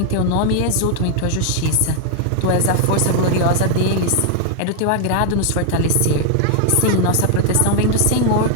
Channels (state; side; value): different; both; correlation 0.00